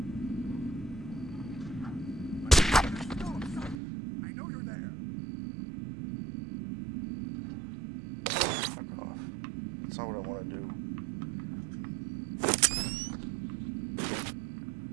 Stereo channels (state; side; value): drops out; left; at 3.8 s